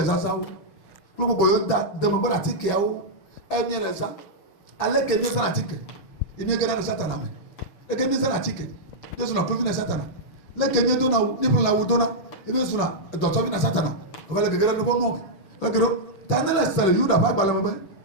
zazawo lo bo yo da de mo ba tike yawo e mi resa ale que mi na tike e mi gara satana me e que mi na tike Yesu na provi na satana le que mi do na ni pro la wo do na e mi suna do to vi na satana o va le gara no bo no le gero tanela sele yuda ba ba le mo be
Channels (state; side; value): late; right; 6.1 ms